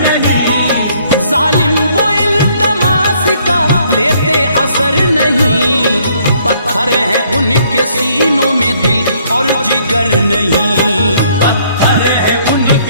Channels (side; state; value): both; inverted; correlation -0.65